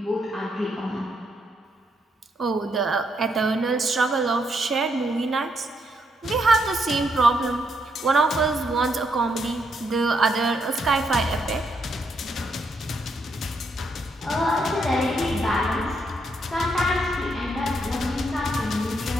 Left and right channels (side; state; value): both; normal; correlation 0.76